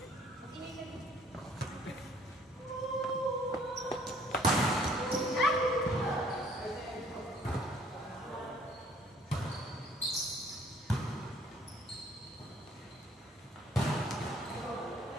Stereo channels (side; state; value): both; normal; correlation 0.59